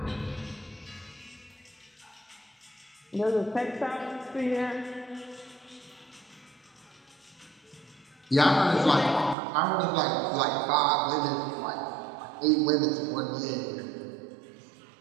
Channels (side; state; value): left; drops out; at 9.3 s